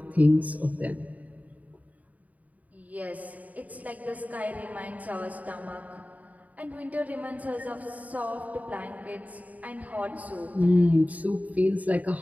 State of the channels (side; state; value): left; late; 0.073 ms